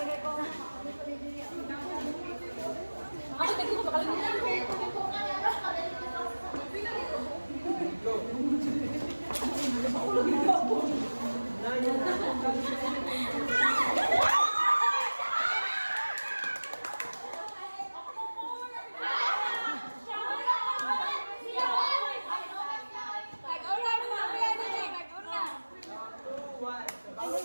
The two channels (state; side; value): inverted; both; correlation -1.00